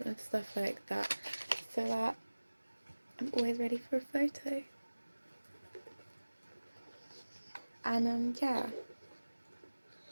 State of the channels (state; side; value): inverted; both; correlation -1.00